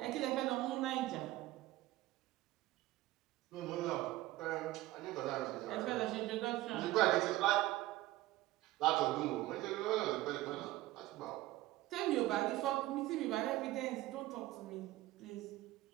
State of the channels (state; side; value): quieter; left; 17.2 dB